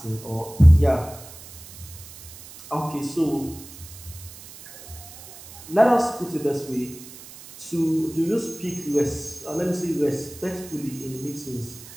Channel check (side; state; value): right; noise; hiss, 17 dB below the sound